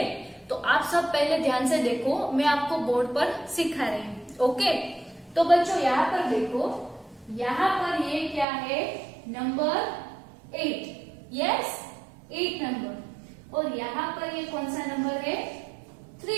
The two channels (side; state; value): left; drops out; at 8.5 s